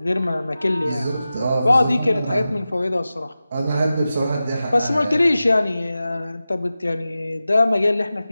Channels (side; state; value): both; inverted; correlation -0.94